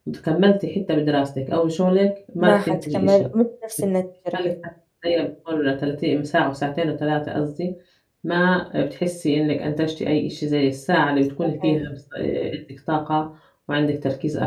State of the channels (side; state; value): both; identical; correlation 1.00